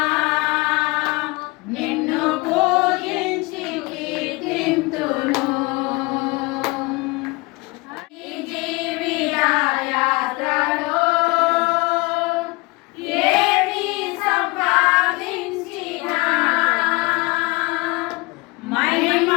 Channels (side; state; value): right; quieter; 25.3 dB